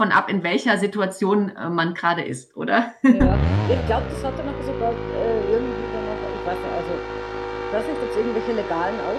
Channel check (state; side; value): identical; both; correlation 1.00